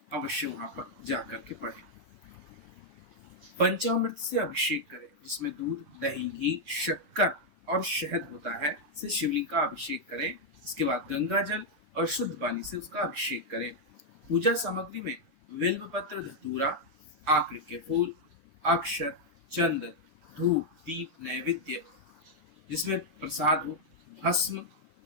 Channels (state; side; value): late; left; 7.0 ms